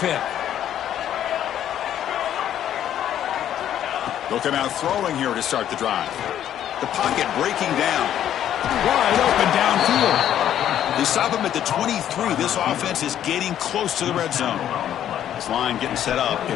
They'll come out throwing here to start the drive. The pocket breaking down. Wide open downfield. They stop him at the 23. This offense is getting close to the red zone. This line getting set up.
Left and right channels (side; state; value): right; quieter; 10.8 dB